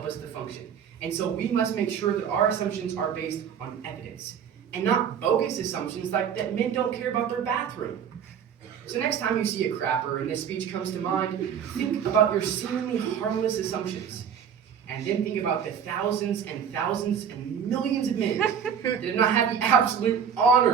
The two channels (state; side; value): quieter; left; 7.8 dB